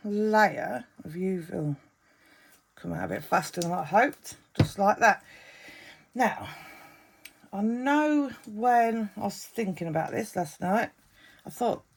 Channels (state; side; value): identical; both; correlation 1.00